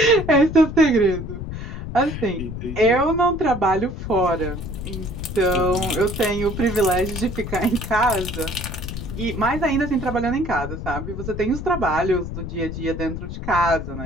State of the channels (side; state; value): left; noise; rumble, 7 dB below the sound